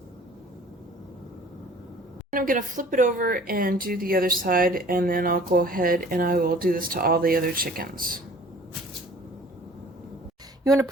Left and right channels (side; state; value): both; normal; correlation 0.49